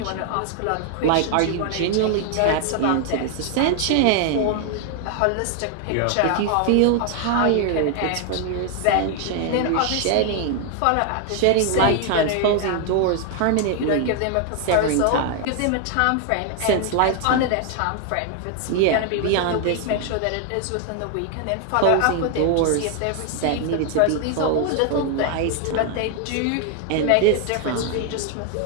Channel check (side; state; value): both; different; correlation 0.00